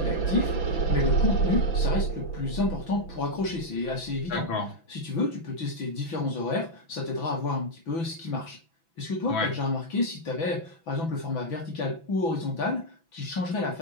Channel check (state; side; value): late; right; 6.0 ms